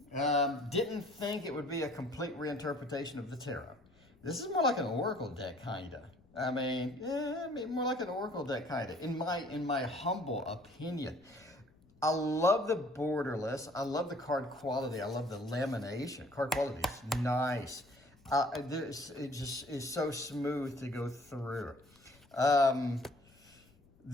Didn't think it would be a complete reinterpretation of the tarot. This is more like an oracle deck, kind of. I mean, more like an oracle deck, kind of, in my humble opinion. I love the borderless. I love the card quality. I love the lamination. Card quality is nice. It just is so smooth to go through.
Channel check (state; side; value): noise; left; rumble, 28 dB below the sound